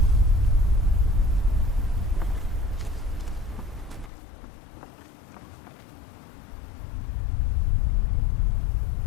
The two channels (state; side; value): drops out; right; at 4.1 s